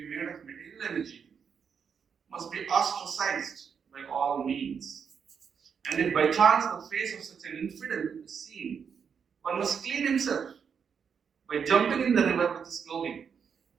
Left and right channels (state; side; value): quieter; left; 6.8 dB